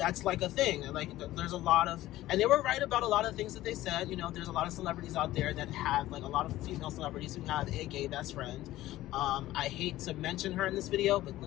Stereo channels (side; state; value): right; quieter; 15.6 dB